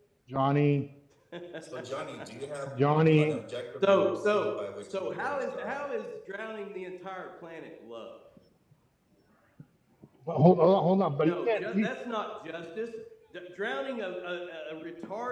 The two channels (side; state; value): both; identical; correlation 1.00